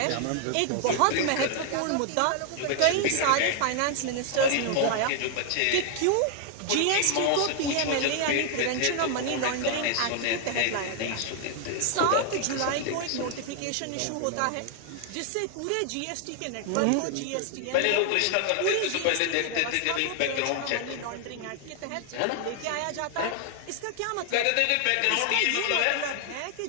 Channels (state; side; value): different; both; correlation 0.00